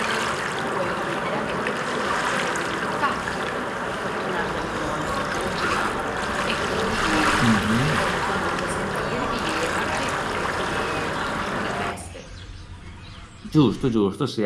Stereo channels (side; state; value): both; identical; correlation 1.00